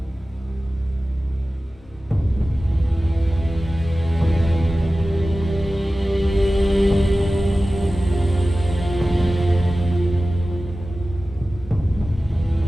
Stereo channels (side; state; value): both; normal; correlation 0.96